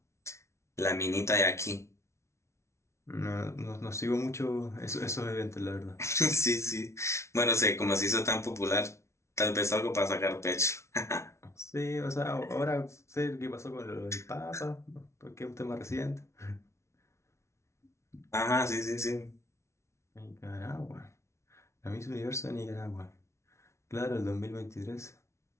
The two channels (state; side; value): late; right; 0.13 ms